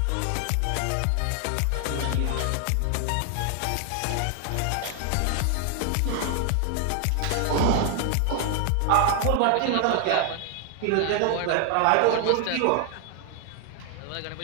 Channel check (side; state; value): both; different; correlation 0.00